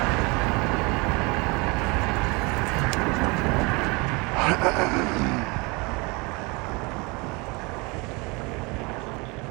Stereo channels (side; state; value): left; quieter; 27.4 dB